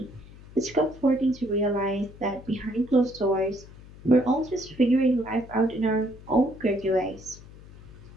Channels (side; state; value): left; noise; hum, 19 dB below the sound